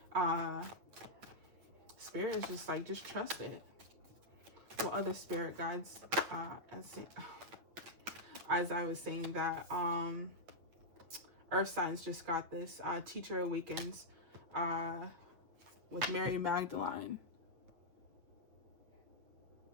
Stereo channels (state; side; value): late; left; 8.6 ms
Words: Spirit is just like, just trust it. What other spirit guides, as I was saying that, Earth signs just got this. Teacher Awakens with Mary Magdalene.